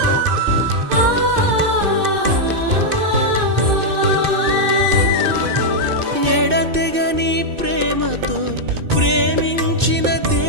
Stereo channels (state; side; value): late; left; 2.6 ms